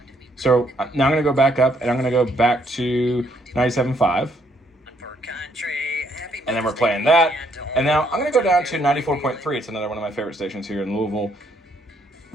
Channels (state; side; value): normal; both; correlation 0.70